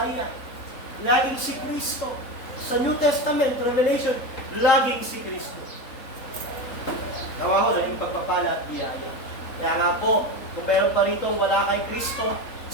laging si Kristo. Sa New Testament, Revelation, laging si Kristo. Gawa ko lang yung pagpapala at biyaya. Kaya nga po, kung meron pa rito wala kay Kristo,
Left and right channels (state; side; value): late; right; 3.8 ms